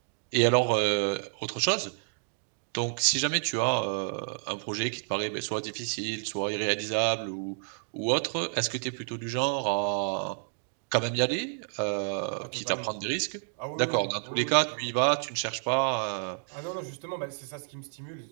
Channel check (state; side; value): silent; left; 58 dB below the other